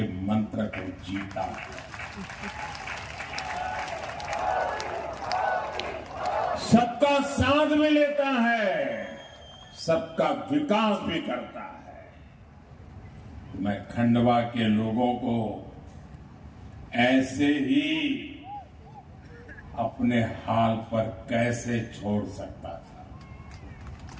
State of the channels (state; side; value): identical; both; correlation 1.00